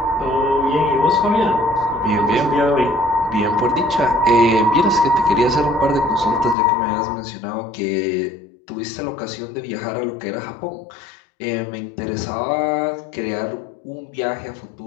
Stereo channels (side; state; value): right; drops out; at 6.6 s